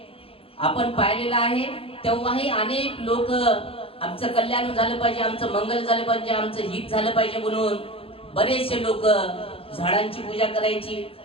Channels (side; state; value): right; late; 0.27 ms